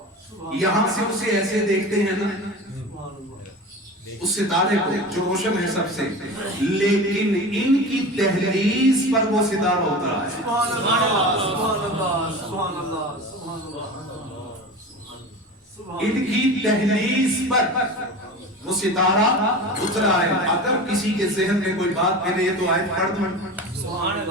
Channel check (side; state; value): both; normal; correlation 0.32